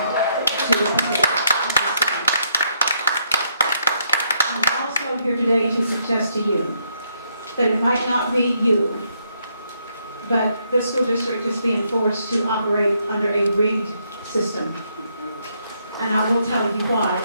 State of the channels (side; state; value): both; inverted; correlation -0.74